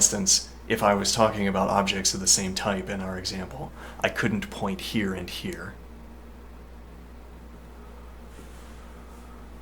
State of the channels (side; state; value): both; identical; correlation 1.00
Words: if I was talking about objects of the same type in our example, I couldn't point here and here.